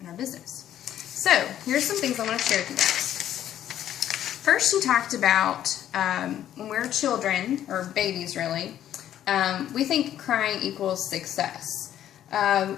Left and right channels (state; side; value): quieter; right; 11.3 dB